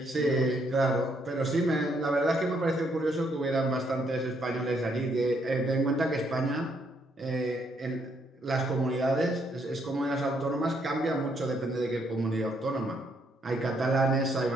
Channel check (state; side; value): normal; both; correlation 0.72